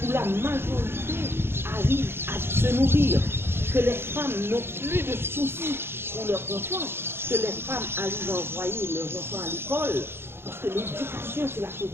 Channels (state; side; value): late; left; 0.11 ms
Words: où la majorité arrive à se nourrir, que les femmes n'ont plus de soucis pour leurs enfants, que les femmes arrivent à envoyer leurs enfants à l'école, parce que l'éducation, c'est la chose